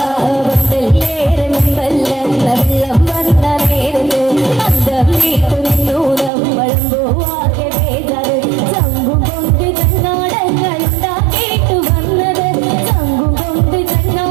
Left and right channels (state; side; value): drops out; left; at 6.3 s